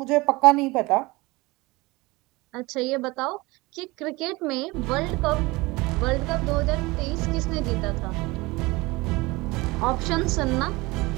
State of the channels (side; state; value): left; quieter; 22.7 dB